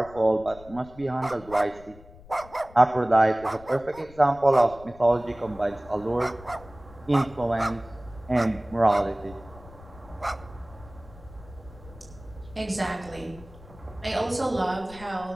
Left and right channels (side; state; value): left; noise; rumble, 20 dB below the sound